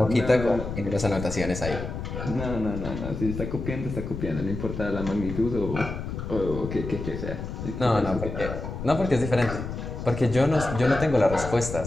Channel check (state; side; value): noise; left; rumble, 7 dB below the sound